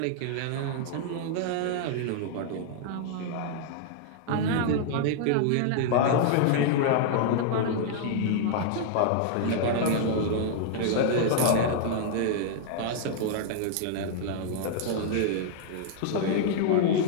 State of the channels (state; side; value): different; both; correlation -0.01